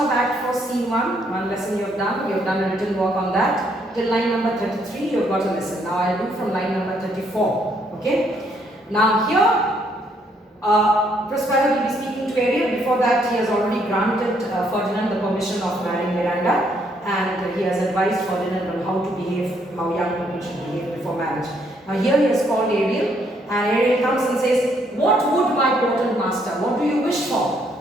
Act 4 Scene 1. One lesson you have done. You have done a written work on that. Till line number 33, you have got a lesson. Now I'll do from line number 34. Okay. Now here, Prospero will be speaking to Ariel. Before that, he has already granted Ferdinand the permission of marrying Miranda. And he has advised Ferdinand on how to behave, how young people should behave before marriage. Now here he has called Ariel. And Ariel comes and says, "What would my potent master? What do you wish for?"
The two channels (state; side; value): normal; both; correlation 0.70